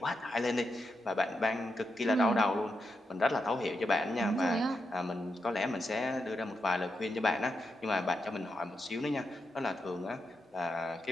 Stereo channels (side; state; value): both; normal; correlation 0.85